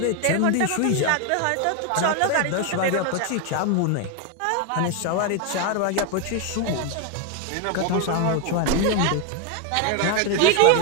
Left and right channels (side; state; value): both; different; correlation 0.01